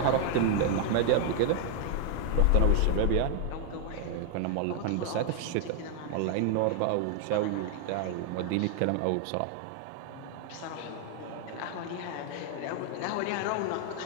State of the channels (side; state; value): both; different; correlation 0.00